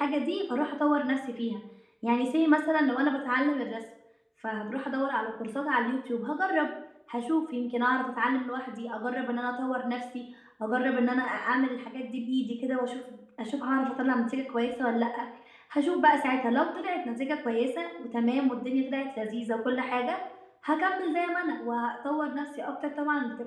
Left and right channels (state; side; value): identical; both; correlation 1.00